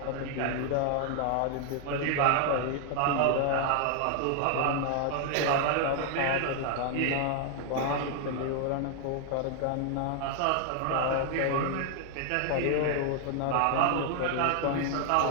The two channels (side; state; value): both; different; correlation 0.00